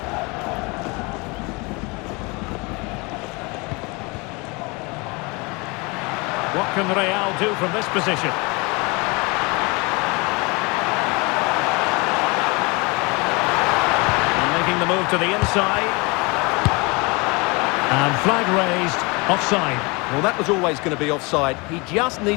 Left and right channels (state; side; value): quieter; right; 27.6 dB